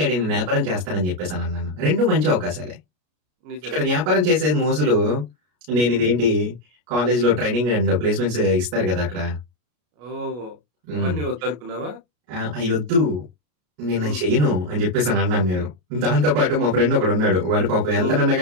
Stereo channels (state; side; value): late; left; 33 ms